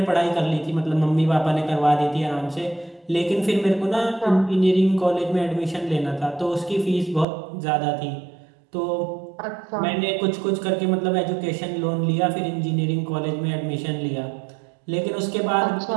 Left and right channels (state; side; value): drops out; left; at 7.2 s